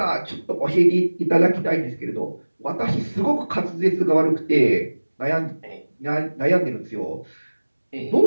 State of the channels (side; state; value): both; inverted; correlation -1.00